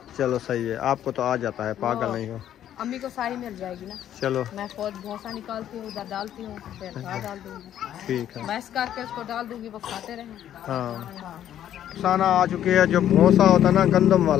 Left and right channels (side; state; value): right; quieter; 11.0 dB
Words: चलो सही है, आपको तो आ जाता है, पागल नहीं हो। अम्मी को सारी मिल जाएगी ना। चलो मैं खुद भूसा निकालती हूँ, उधर डालती हूँ, फिर घास डाल दूंगी। ठीक है, मैश करके उसको डाल दूंगी, वो खाते रहें। हाँ खाना आ चुकी है। जो भूसा होता है ना गंदम